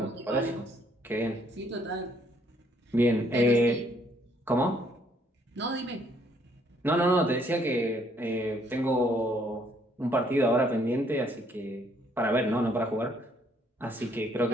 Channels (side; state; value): both; normal; correlation 0.67